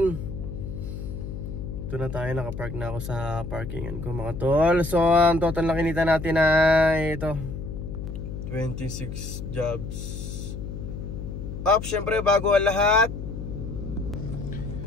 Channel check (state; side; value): noise; left; hum, 7 dB below the sound